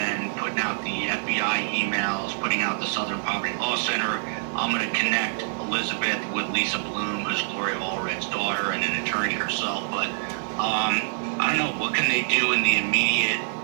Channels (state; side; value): silent; left; 61 dB below the other